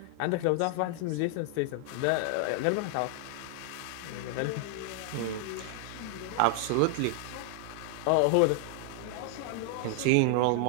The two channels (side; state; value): both; different; correlation 0.00